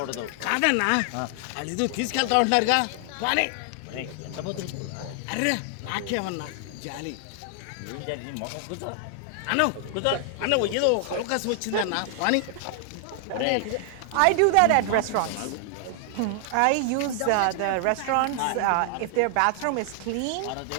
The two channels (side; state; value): both; different; correlation 0.00